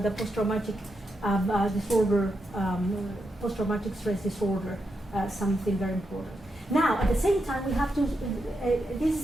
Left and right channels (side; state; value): both; normal; correlation 0.84